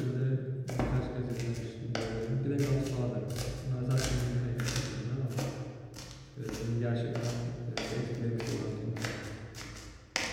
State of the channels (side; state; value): both; identical; correlation 1.00